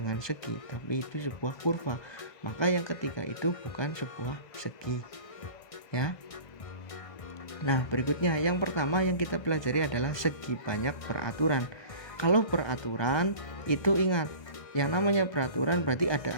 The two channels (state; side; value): late; right; 1.6 ms